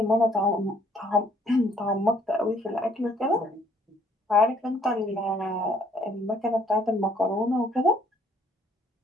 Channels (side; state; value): both; normal; correlation 0.63